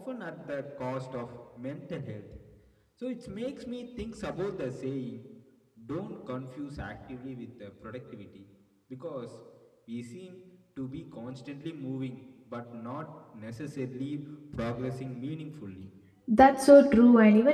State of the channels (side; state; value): both; identical; correlation 1.00